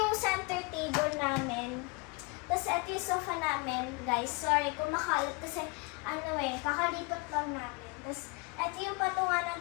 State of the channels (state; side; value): quieter; right; 30.3 dB